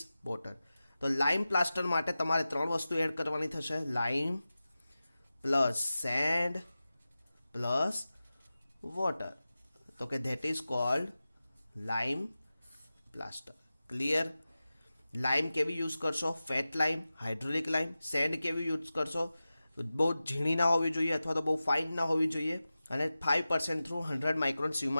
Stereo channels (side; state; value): both; inverted; correlation -0.95